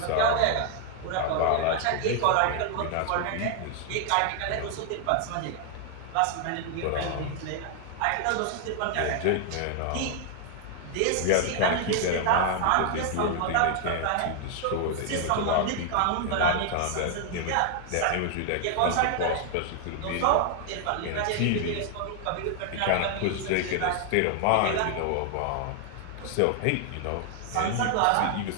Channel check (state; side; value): different; both; correlation 0.00